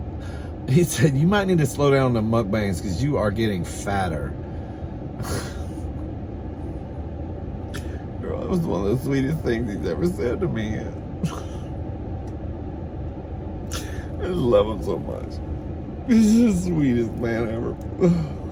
you might need to slow down the mukbangs because you are getting fatter. Girl, that was one of the sweetest things he's ever said to me. I just love him so much. He's the sweetest man ever.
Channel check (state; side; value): identical; both; correlation 1.00